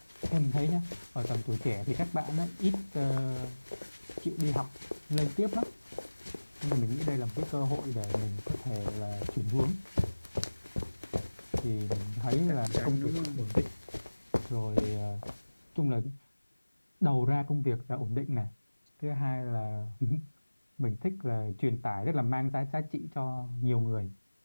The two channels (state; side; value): inverted; both; correlation -1.00